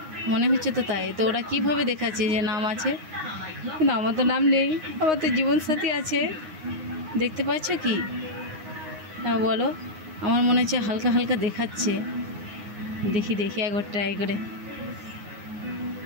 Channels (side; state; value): left; late; 9.6 ms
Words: মনে হচ্ছে তো তাই। তো ওরা কীভাবে দেখাচ্ছে যে নাম আছে, কিন্তু আমার তো নাম নেই, আমার তো জীবনসাথী আছে। দেখতে পাচ্ছ কি? হ্যাঁ বলো, আমার মনে হচ্ছে হালকা হালকা দেখাচ্ছে। দেখি দেখি একবার ট্রাই করে